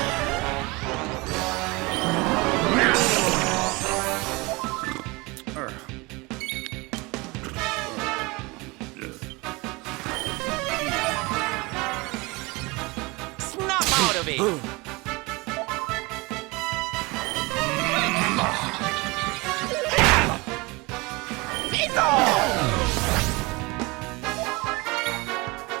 Snap out of it!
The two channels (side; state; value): left; quieter; 24.9 dB